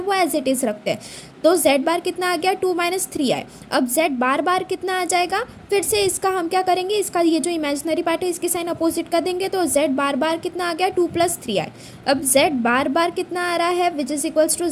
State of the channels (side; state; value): both; identical; correlation 1.00